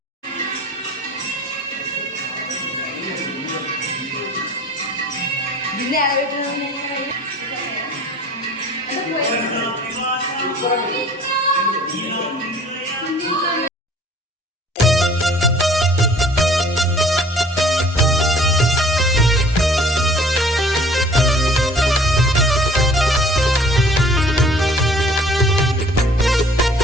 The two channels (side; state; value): both; normal; correlation 0.51